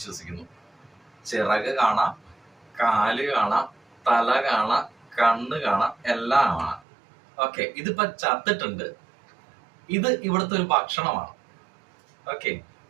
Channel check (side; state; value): left; drops out; at 6.8 s